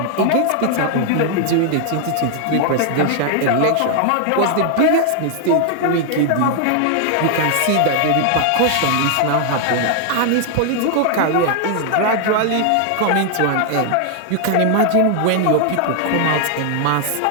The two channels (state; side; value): different; both; correlation 0.00